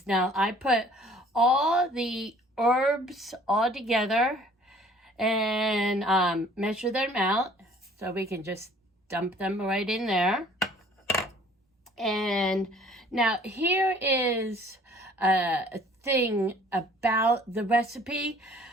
Now I put all the herbs all together and measure them out so we can just dump them right in there. And now here is a thing about the recipe.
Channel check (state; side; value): normal; both; correlation 0.54